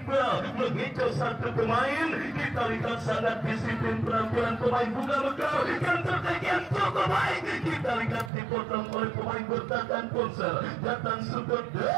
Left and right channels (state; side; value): drops out; left; at 8.3 s